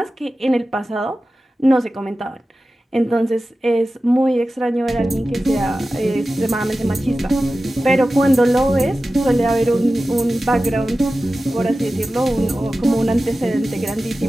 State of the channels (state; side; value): normal; both; correlation 0.94